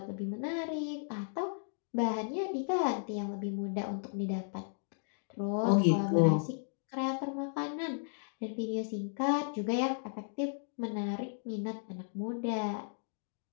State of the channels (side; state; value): right; silent; digital silence